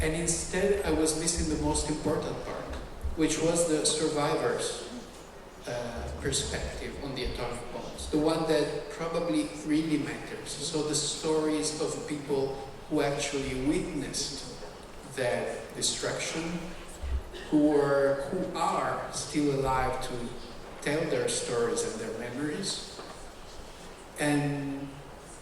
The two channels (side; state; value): both; identical; correlation 1.00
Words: And instead I was missing the most important part, which was the survivors' perspective on the atomic bombs, the one that probably really matters. So the stories of people who actually witnessed that destruction, who are still alive to tell their stories and their memories. And